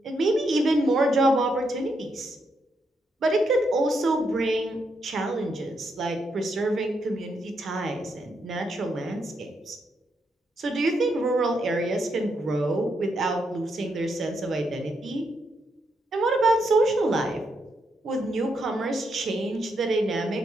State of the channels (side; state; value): both; normal; correlation 0.80